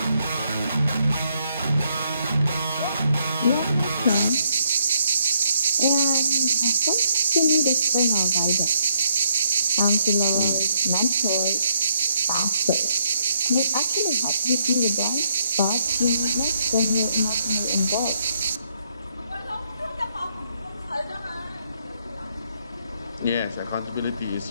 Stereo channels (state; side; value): inverted; both; correlation -0.73